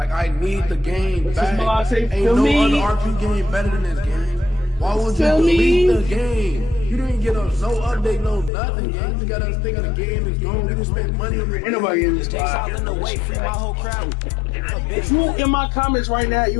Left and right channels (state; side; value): drops out; right; at 8.5 s